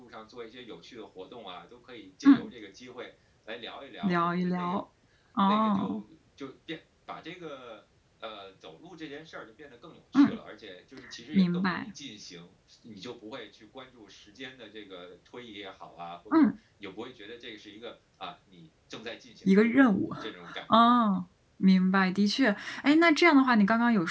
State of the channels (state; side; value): identical; both; correlation 1.00